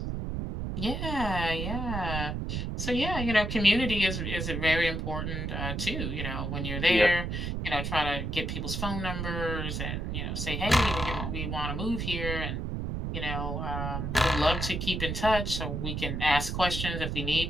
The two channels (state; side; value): noise; right; rumble, 3 dB below the sound